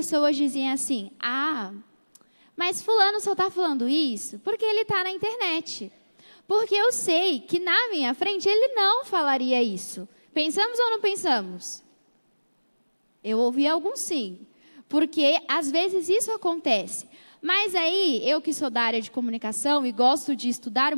dizem assim: mas fulano só está falando isso porque ele está na internet. Porque eu sei que na minha frente ele não falaria isso. Pensamos ou não pensamos? Eu ouvi alguns sim. Porque às vezes isso acontece. Mas aí, eu que sou da área de comunicação e gosto de estudar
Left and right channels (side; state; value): both; inverted; correlation -1.00